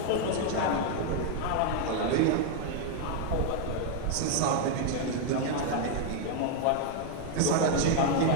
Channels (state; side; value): different; both; correlation 0.00